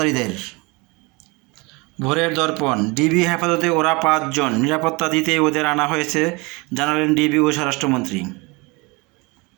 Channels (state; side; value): quieter; left; 26.5 dB